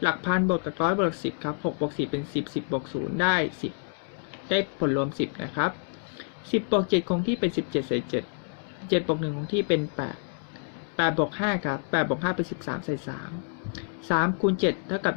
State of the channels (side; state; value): right; silent; 58 dB below the other